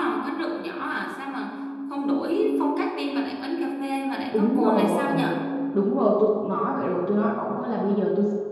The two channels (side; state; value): both; identical; correlation 1.00